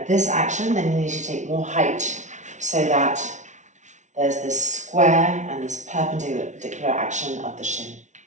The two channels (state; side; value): late; left; 0.35 ms